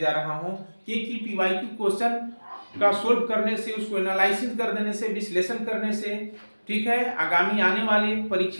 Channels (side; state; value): both; inverted; correlation -1.00